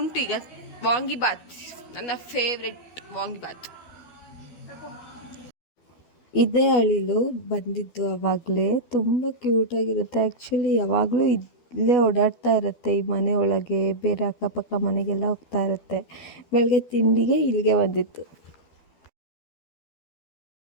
ಈಗ. ವಾಂಗಿಬಾತ್, ನನ್ನ ಫೇವ್ರೆಟ್ ವಾಂಗಿಬಾತ್. ಇದೇ ಅಳಿಲು ಬಂದಿದ್ದು ಆವಾಗಲೇ. ತುಂಬ ಕ್ಯೂಟಾಗಿರುತ್ತೆ. ಆ್ಯಕ್ಚುಲಿ ಯಾವಾಗಲೂ ಇಲ್ಲೇ ಓಡಾಡ್ತಾ ಇರುತ್ತೆ ಈ ಮನೆ ಒಳಗೆ, ಬೇರೆ ಅಕ್ಕಪಕ್ಕ ಮನೆಗೆಲ್ಲ ಹೋಗ್ತಾ ಇರುತ್ತೆ. ಬೆಳಗ್ಗೆ ತಿಂಡಿಗೆ ಇಲ್ಲಿಗೆ ಬಂದಿತ್ತು.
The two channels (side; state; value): right; late; 12 ms